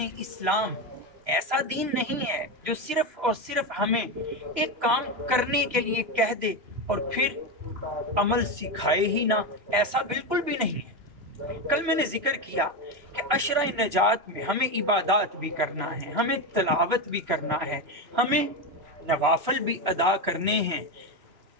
اسلام ایسا دین نہیں ہے جو صرف اور صرف ہمیں ایک کام کرنے کے لیے کہہ دے اور پھر عمل سکھائے ہی نہ، ایسا بالکل بھی نہیں ہے۔ کل میں نے ذکر کیا کہ عشرہ نجات میں ہمیں عبادات بھی کرنا ہے، ہمیں تلاوت بھی کرنا ہے، ہمیں نوافل بھی ادا کرنے ہیں۔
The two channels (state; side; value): late; left; 3.0 ms